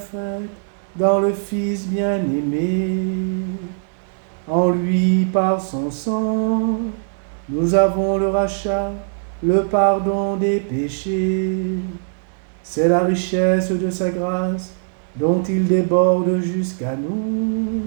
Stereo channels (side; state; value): left; silent; digital silence